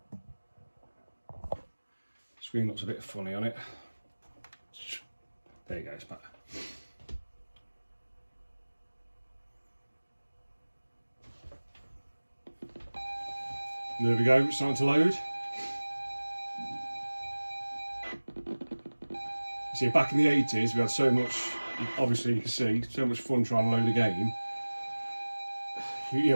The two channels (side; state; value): both; inverted; correlation -1.00